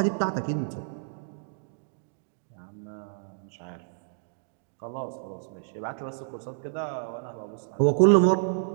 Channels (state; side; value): silent; left; digital silence